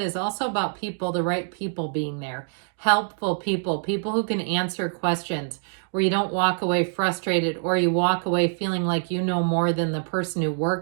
is also about people, the right people being there. Helpful people, people who can answer questions, where you don't walk away frustrated or you walk away feeling like you know more than the person who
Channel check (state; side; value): silent; left; 62 dB below the other